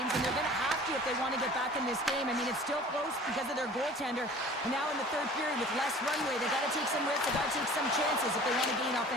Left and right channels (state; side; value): normal; both; correlation 0.45